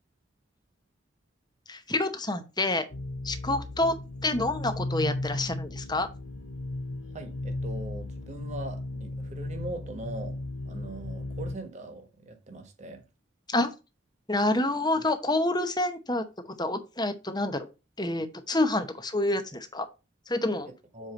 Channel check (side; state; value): both; normal; correlation 0.48